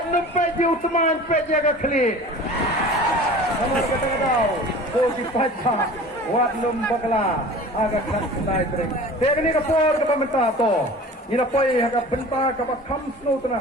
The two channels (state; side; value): normal; both; correlation 0.41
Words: pek you teman pek jaga klik. Nomor kata-kata. Oh dipaca. Wat bakla agak nak sedai tering. Teknik kapor ke pemerintah to. Ina poi agak benta ke kam snow tena.